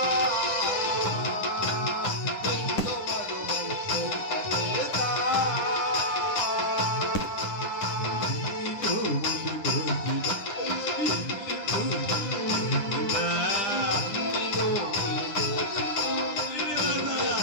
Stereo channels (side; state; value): right; late; 10 ms